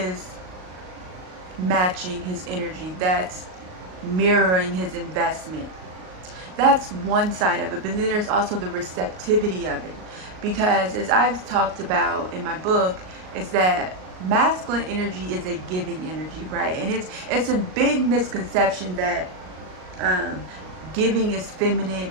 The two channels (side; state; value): left; late; 38 ms